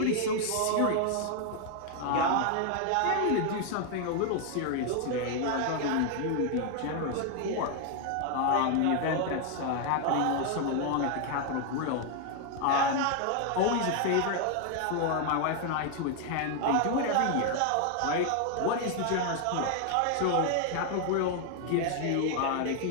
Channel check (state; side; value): different; both; correlation 0.00